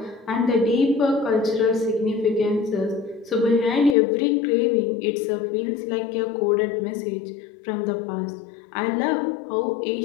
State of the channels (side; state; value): right; drops out; at 4.0 s